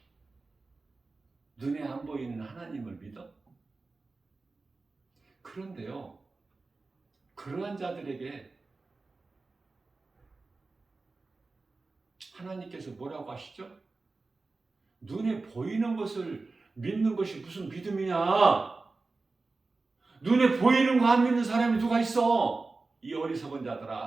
눈에 안 보이는 하나님을 믿어? 그런데요, 그러한 자들에게 하나님께서 뭐라고 하시죠? 눈에 보이는 것을 믿는 것이 무슨 믿음이냐? 눈에 보이는 거 안 믿는 사람이 누가 있어? 이 어리석은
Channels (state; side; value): quieter; left; 3.7 dB